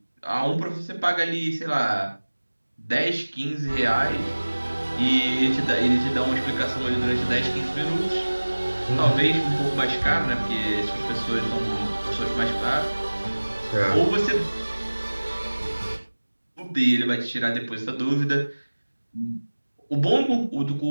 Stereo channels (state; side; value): inverted; both; correlation -1.00